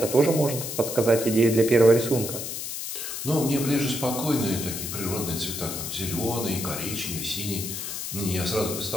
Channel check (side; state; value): left; noise; hiss, 5 dB below the sound